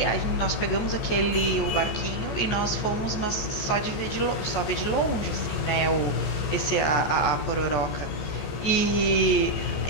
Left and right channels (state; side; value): late; right; 14 ms